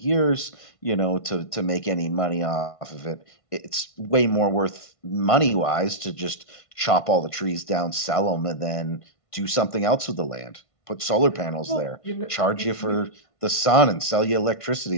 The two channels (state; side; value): late; right; 1.5 ms